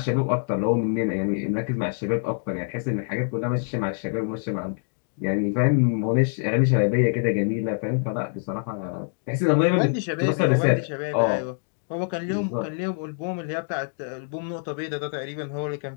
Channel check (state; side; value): silent; right; 62 dB below the other